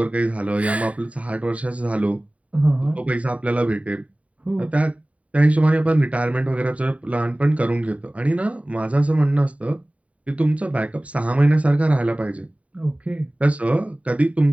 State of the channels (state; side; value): late; left; 0.067 ms